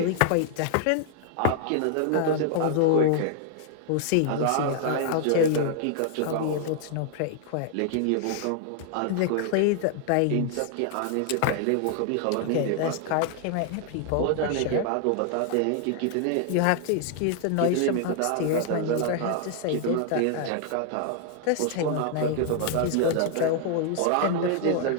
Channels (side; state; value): both; different; correlation 0.00